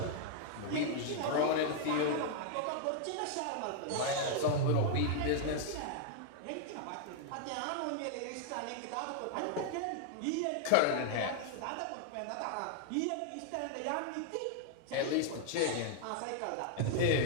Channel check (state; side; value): different; both; correlation -0.01